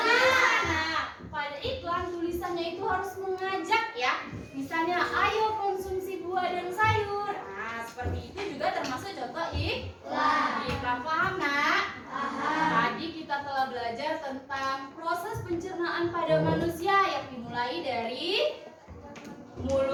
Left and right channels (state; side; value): identical; both; correlation 1.00